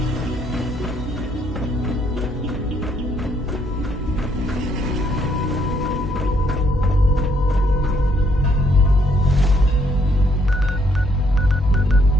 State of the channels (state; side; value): normal; both; correlation 0.70